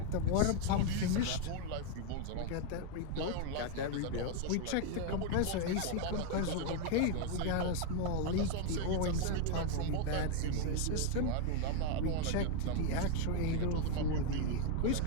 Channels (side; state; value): both; different; correlation 0.01